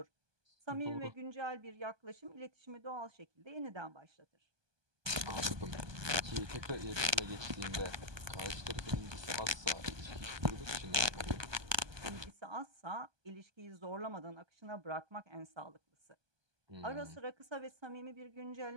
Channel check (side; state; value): left; late; 1.2 ms